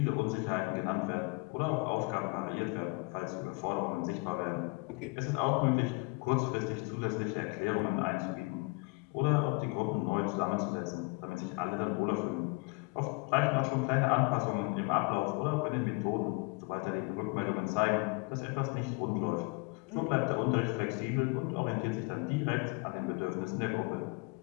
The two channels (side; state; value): right; quieter; 29.5 dB